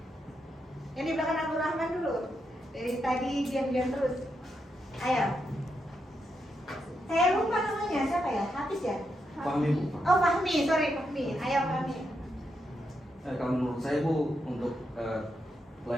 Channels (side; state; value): both; normal; correlation 0.83